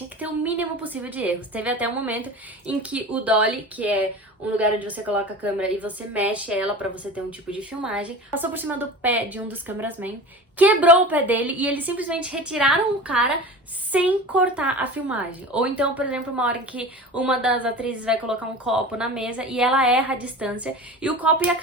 que ter o mínimo possível de erros. Teve até um momento em que o dolly, que é um lugar onde você coloca a câmera e você mexe ela pra você ter um tipo de filmagem, passou por cima do pé de um dos cameramen, quebrou o pé dele e eles simplesmente retiraram o cara sem cortar a filmagem. Ou então, por exemplo, uma hora em que uma das atrizes vai colocar um copo na mesa e ela erra a distância e o copo ia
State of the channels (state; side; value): normal; both; correlation 0.34